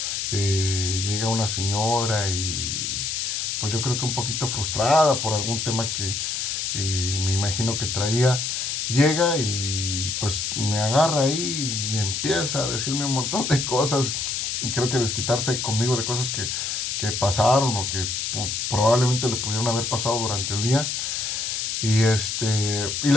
Llega una señora y pues yo creo que un poquito frustrada por algún tema que me imagino que traía. Llega y pues me agarra ahí y empieza a decirme un montón de cosas. Y creo que desquitarse conmigo de cosas que pasaron o que probablemente le pudieron haber pasado durante el día. Y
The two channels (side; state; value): left; noise; hiss, 2 dB below the sound